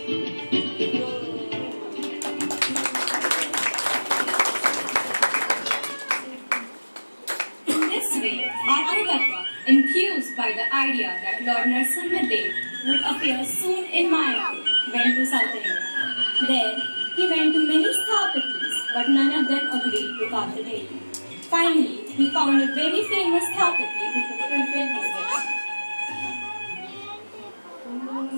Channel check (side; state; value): both; inverted; correlation -1.00